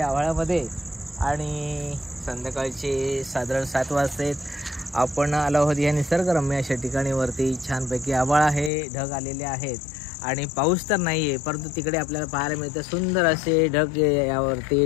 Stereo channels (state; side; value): drops out; right; at 8.7 s